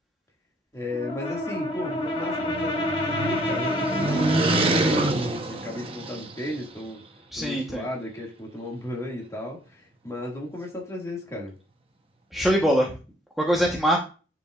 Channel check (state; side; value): normal; both; correlation 0.63